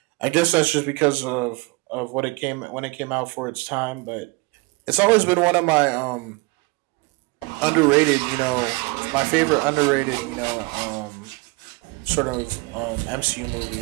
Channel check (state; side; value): quieter; left; 26.1 dB